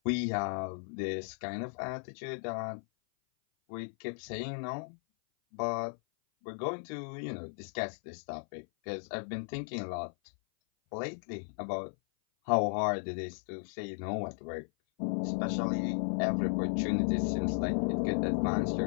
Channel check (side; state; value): right; silent; 54 dB below the other